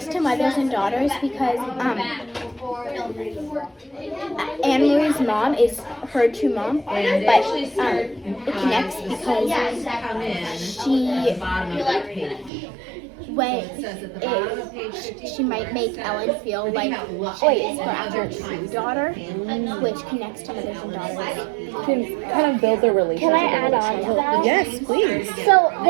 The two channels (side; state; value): left; drops out; at 12.5 s